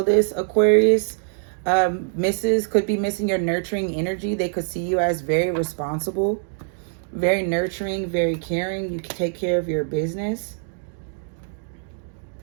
this Aquarius could be missing your nurturing energy. They could see you as very responsible, very nurturing, very caring. You can take care of your business.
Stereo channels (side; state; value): left; silent; 58 dB below the other